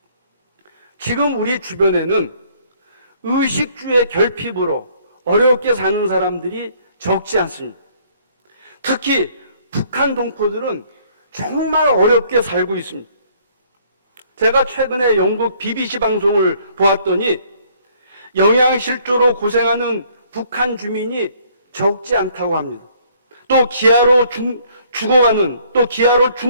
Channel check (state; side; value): inverted; both; correlation -0.62